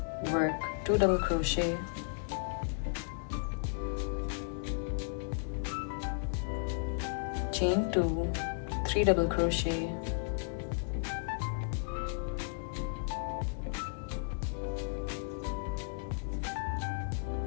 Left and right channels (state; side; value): silent; right; digital silence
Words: work 2 double crochet, chain 2, 3 double crochet,